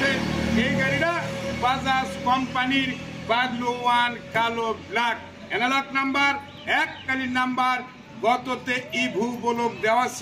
এই গাড়িটা বাজাজ কোম্পানির বাগলু ওয়ান কালো ব্ল্যাক অ্যানালগ নাম্বার, এককালীন নাম্বার। গততে ইভু বলক দেওয়া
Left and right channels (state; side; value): identical; both; correlation 1.00